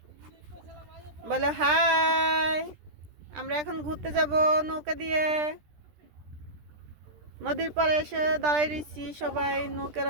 বলো হাই। আমরা এখন ঘুরতে যাব নৌকা দিয়ে। নদীর পাড়ে এসে দাঁড়াই রয়েছি সবাই নৌকার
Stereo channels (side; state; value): left; late; 13 ms